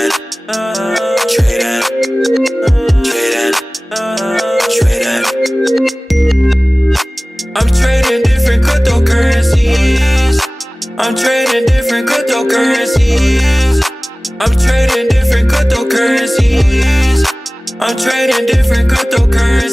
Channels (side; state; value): both; normal; correlation 0.98